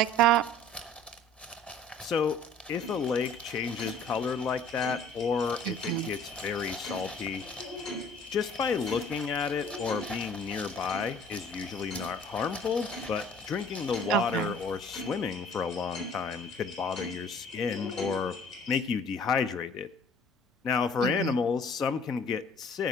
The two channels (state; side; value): normal; both; correlation 0.52